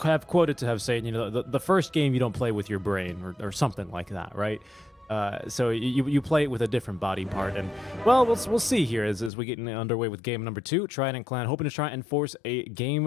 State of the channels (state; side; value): drops out; right; at 9.3 s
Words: have quoted to have said, the first game you don't play with your brain, or something like that, right? So you play it with a different body part, and well, we'll see here as we get underway with game number 2. Trident Clan hoping to try and force a